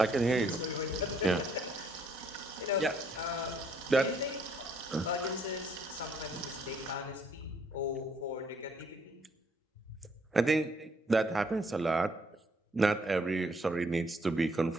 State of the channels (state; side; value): normal; both; correlation 0.66